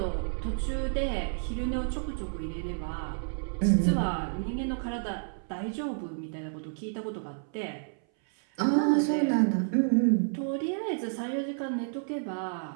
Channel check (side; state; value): left; silent; 58 dB below the other